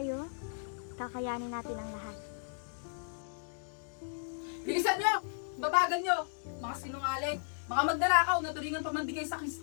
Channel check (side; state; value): right; silent; digital silence